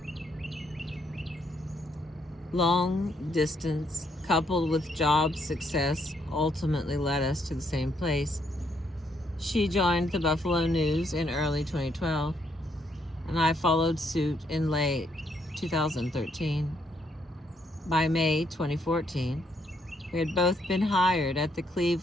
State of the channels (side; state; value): both; normal; correlation 0.73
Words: Long distance, coupled with job success, ultimately led us to the same place. She joined the Buffalo News in early 2012, and I followed suit in late 2013. By May 2014, we had both been hired at the